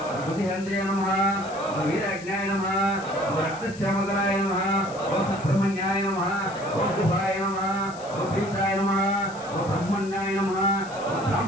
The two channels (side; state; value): left; noise; hiss, 19 dB below the sound